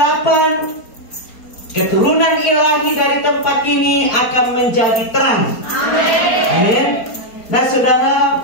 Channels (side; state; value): right; late; 4.3 ms